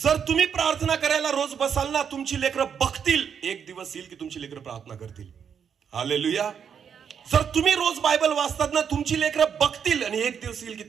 तुम्ही प्रार्थना करायला रोज बसाल ना, तुमची लेकरं बघतील. एक दिवस येईल की तुमची लेकरं प्रार्थना करतील. हालेलुया. जर तुम्ही रोज बायबल वाचतात ना, तुमची लेकरं बघतील आणि एक दिवस येईल की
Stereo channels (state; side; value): quieter; left; 7.5 dB